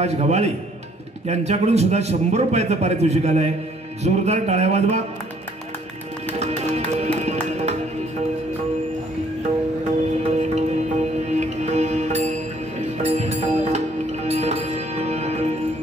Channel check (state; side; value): normal; both; correlation 0.63